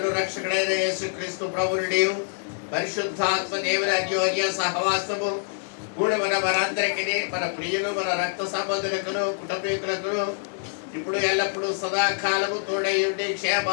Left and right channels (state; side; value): silent; right; 61 dB below the other